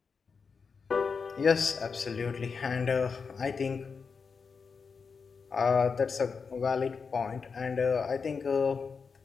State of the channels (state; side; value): quieter; right; 5.4 dB